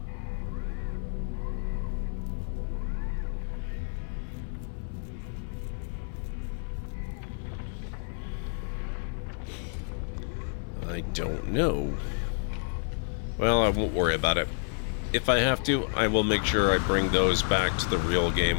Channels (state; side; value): silent; right; 58 dB below the other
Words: I don't know. Well, I won't worry about it. If I have to, I will make sure I bring those back to the real